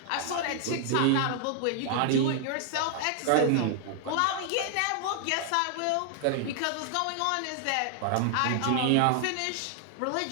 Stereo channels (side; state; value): both; different; correlation 0.00